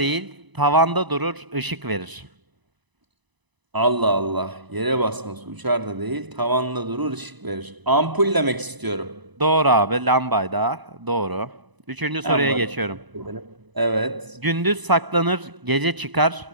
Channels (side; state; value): left; late; 1.0 ms